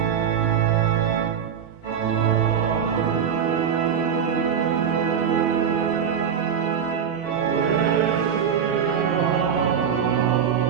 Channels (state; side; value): quieter; left; 7.8 dB